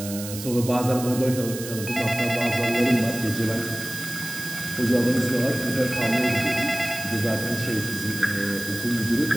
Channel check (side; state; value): right; noise; hiss, 10 dB below the sound